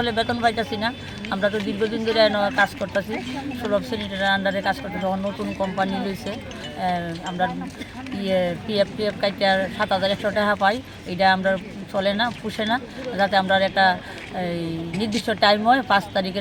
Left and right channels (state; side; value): identical; both; correlation 1.00